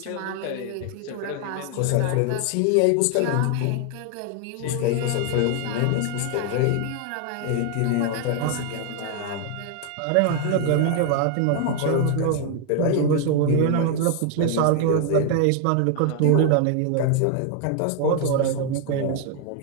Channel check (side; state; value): both; different; correlation 0.00